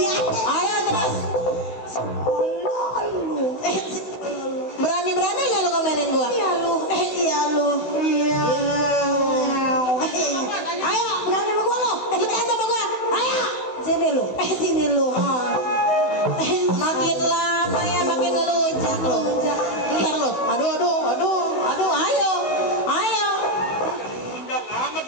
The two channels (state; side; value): late; right; 16 ms